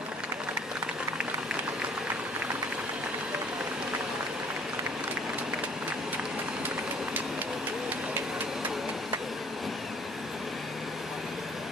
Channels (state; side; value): normal; both; correlation 0.57